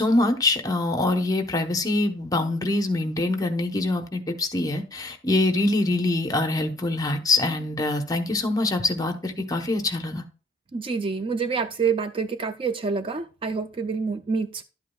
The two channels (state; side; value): normal; both; correlation 0.62